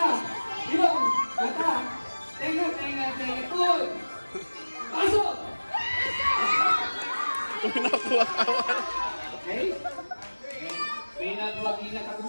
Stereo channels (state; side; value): inverted; both; correlation -1.00